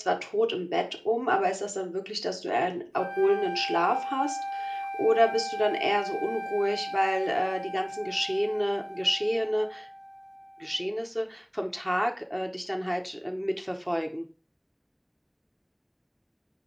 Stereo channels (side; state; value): both; identical; correlation 1.00